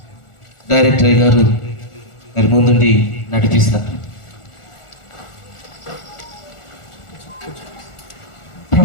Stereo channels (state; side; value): late; right; 1.4 ms